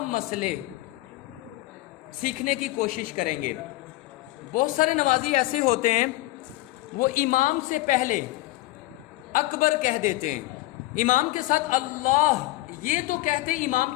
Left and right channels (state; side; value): quieter; right; 18.3 dB